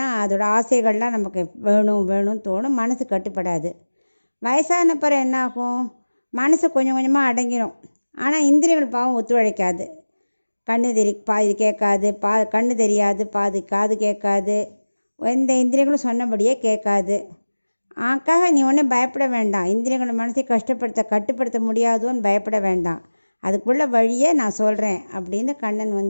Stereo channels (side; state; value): both; inverted; correlation -1.00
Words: அதோட ஆசைகள்லாம் நமக்கு வேணும்னு தோணும், மனசு கட்டுப்படாது. வயசான பிறகு என்ன ஆகும், மனசு கொஞ்சம் கொஞ்சமாக அடங்கிடும். ஆனால் இந்திரியங்கள் பாவம் ஒத்துழைக்காது. பாதி கேட்காது, கண்ணு தெரியாது, பாதி காது கேட்காது, எந்த இந்திரியங்களும் சொன்னபடியே கேட்காது. ஆக்காக நீ ஒன்றும் பயப்பட வேண்டாம். இந்திரியங்களை மனசை கட்டுப்படுத்த முடியாதோன்னு பயப்பட வேண்டாம். அதுக்குள்ள வழியே நான் சொல்கிறேன் அப்படின்னு கண்ணன்